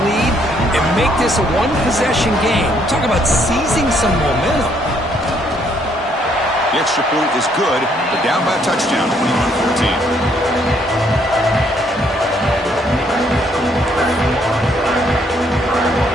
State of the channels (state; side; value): normal; both; correlation 0.69